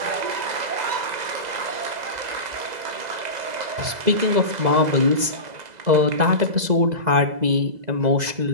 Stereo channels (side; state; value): left; late; 2.0 ms